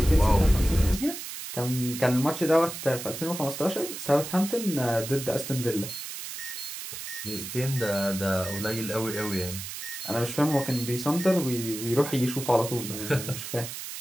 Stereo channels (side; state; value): right; noise; hiss, 8 dB below the sound